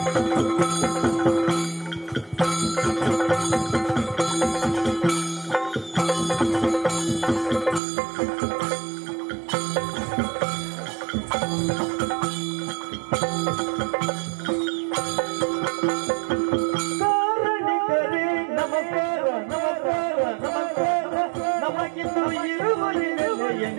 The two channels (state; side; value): drops out; left; at 7.8 s